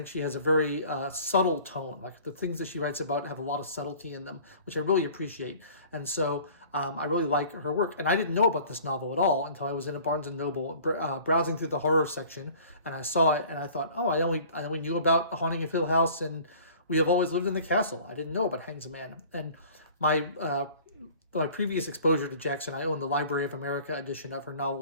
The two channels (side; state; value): both; inverted; correlation -0.48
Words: she has a very subtle tone. Like the things that she writes about have a lot of subtlety in them, which I really appreciate. And so I really like her work. And I didn't know about this novel at all until I was in a Barnes & Noble browsing through the horror section. And I saw it and I thought, oh, I only knew about Haunting of Hill House and We Have Always Lived in the Castle. I didn't know about Hangsaman. And my previous exposure to Jackson, I owned the Library of America edition of her